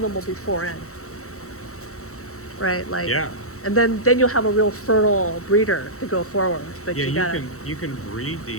them will be 4N. Right? Like, Yeah. and then you'll have a real fertile breeder to go forward. But Yeah, you can breed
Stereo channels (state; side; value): late; right; 0.64 ms